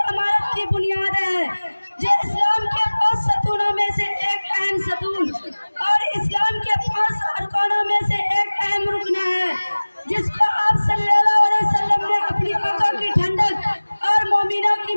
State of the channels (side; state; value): both; inverted; correlation -1.00